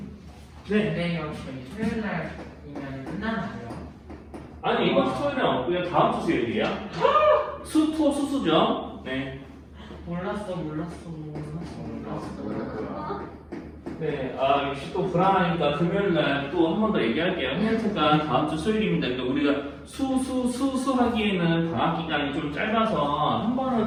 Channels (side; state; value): both; identical; correlation 1.00